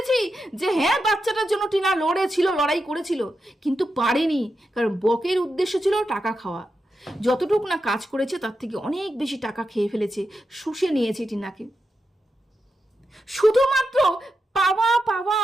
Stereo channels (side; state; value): both; normal; correlation 0.88